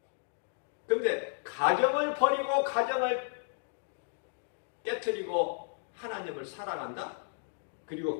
근데 가정을 버리고 가정을 깨트리고 하나님을 사랑한다? 그리고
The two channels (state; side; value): silent; right; digital silence